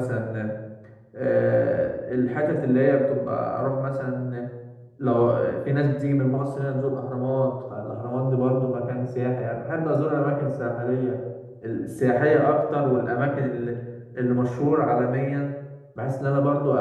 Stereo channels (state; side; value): identical; both; correlation 1.00